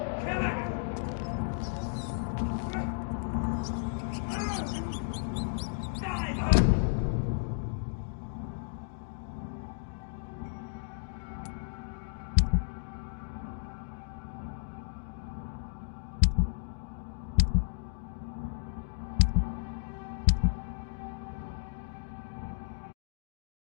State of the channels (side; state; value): right; silent; digital silence